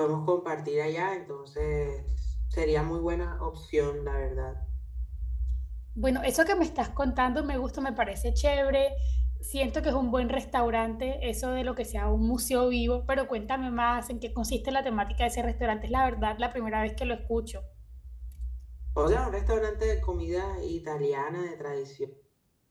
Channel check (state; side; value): identical; both; correlation 1.00